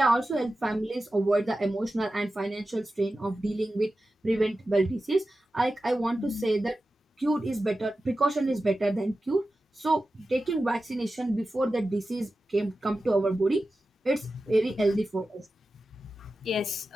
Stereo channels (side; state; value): both; normal; correlation 0.93